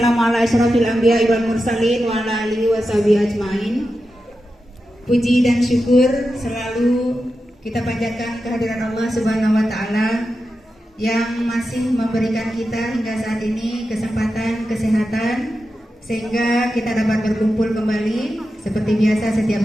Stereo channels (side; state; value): both; normal; correlation 0.90